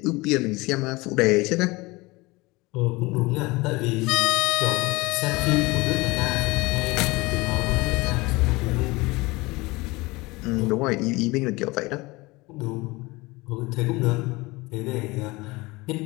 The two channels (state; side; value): quieter; right; 22.8 dB